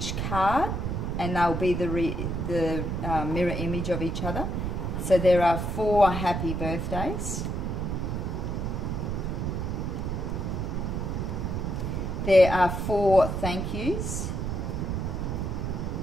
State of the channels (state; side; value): noise; right; rumble, 2 dB below the sound